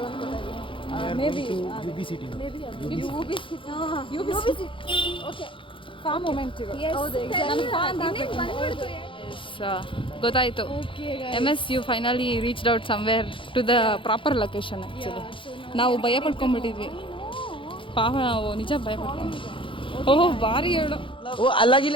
ಅನ್ಕೊಳ್ತಾ ಮೇಬಿ ಓಕೆ ಫಾರ್ಮ್ ಮೂಮೆಂಟ್. ಹೌದು, ಗೊತ್ತಾಯಿತು. MS you finally reached out somewhere to the proper location. Actually ನಾವು ಭಯ ಪಡ್ಕೊಂಡ್ಬಿಟ್ಟಿದ್ವಿ. ಪಾಪ ನಾವು ನಿಜ ಭಯ ಪಡ್ಕೊಂಡ್ಬಿಟ್ಟಿದ್ವಿ. ಓಹೋ ಭಾರಿ ಹೇಳು.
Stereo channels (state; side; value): late; right; 0.25 ms